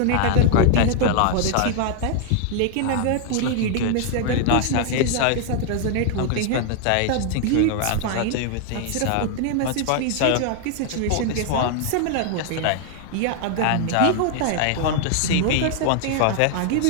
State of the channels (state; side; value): different; both; correlation 0.00